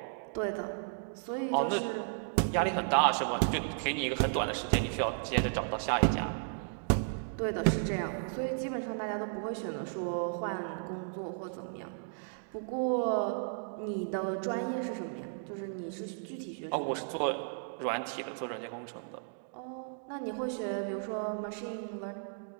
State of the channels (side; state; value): left; silent; digital silence